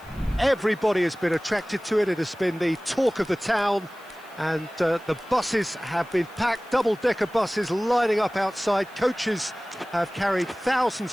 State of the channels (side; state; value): left; noise; hiss, 27 dB below the sound